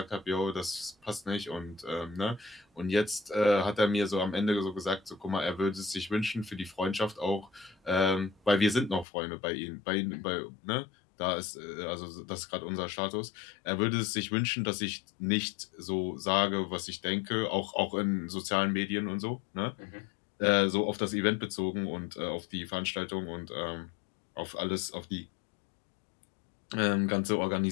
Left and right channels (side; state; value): right; drops out; at 9.1 s